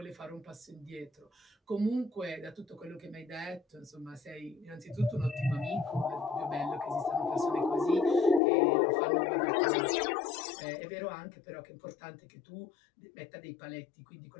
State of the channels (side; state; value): right; drops out; at 8.4 s